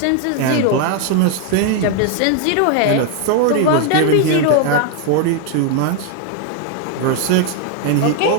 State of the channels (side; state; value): both; different; correlation 0.01